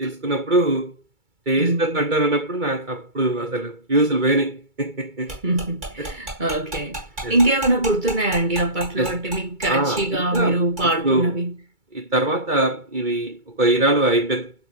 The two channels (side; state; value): left; late; 2.3 ms